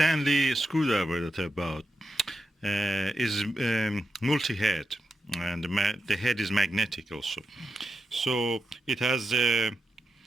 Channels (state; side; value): normal; both; correlation 0.89